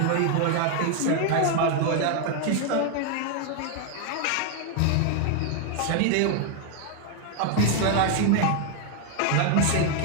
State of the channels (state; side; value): different; both; correlation 0.00